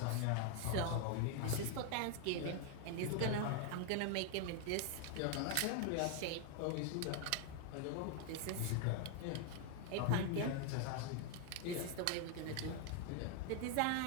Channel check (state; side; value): different; both; correlation 0.01